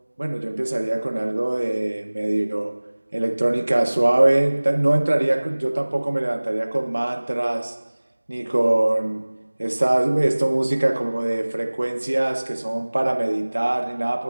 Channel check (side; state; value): both; inverted; correlation -1.00